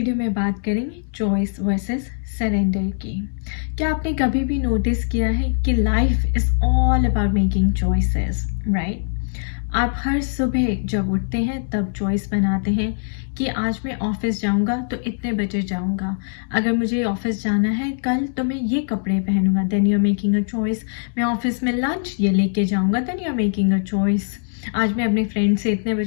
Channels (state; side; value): silent; right; 64 dB below the other